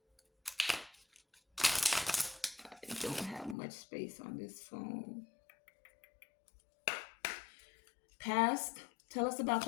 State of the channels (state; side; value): drops out; right; at 3.6 s